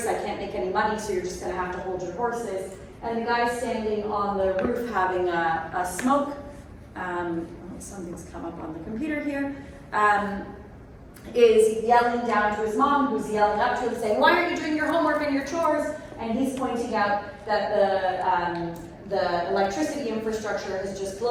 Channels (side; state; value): both; identical; correlation 1.00